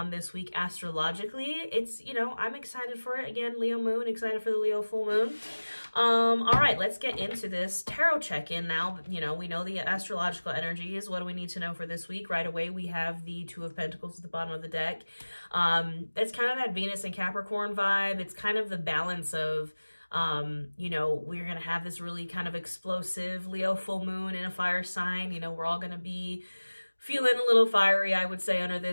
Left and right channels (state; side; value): inverted; both; correlation -1.00